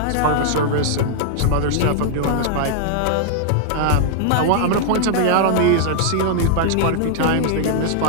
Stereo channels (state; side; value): different; both; correlation -0.01